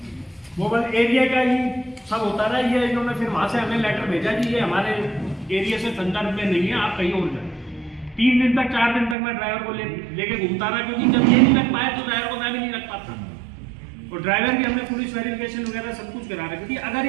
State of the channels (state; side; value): drops out; left; at 9.2 s